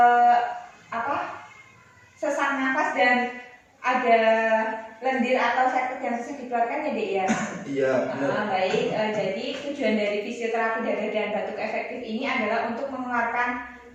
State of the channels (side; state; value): both; identical; correlation 1.00